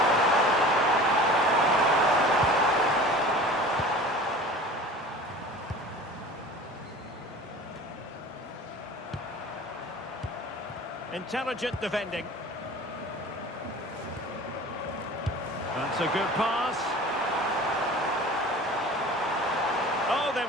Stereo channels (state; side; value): normal; both; correlation 0.40